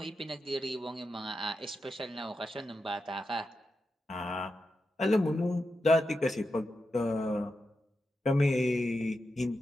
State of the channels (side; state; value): both; normal; correlation 0.88